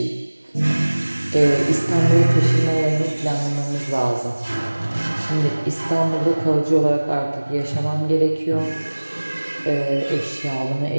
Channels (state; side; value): inverted; both; correlation -1.00